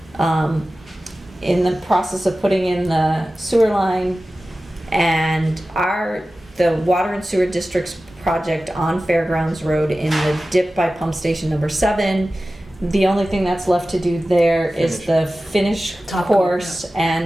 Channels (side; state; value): both; normal; correlation 0.95